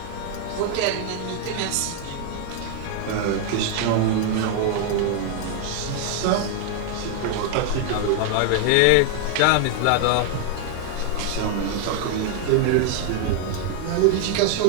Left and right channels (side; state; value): both; different; correlation 0.00